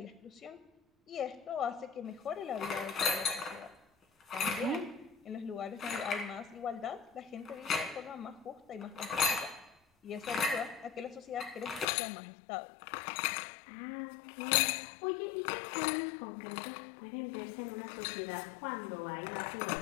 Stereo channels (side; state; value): right; drops out; at 11.9 s